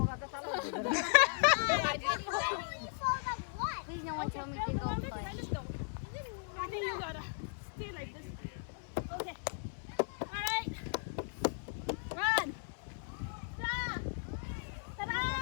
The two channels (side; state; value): right; silent; 53 dB below the other